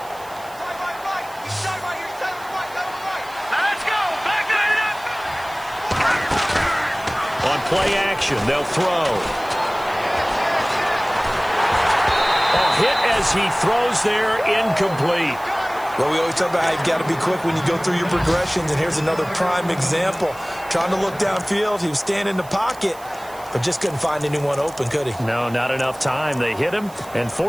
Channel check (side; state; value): right; noise; hiss, 21 dB below the sound